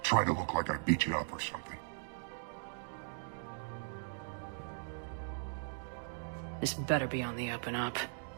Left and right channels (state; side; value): silent; left; digital silence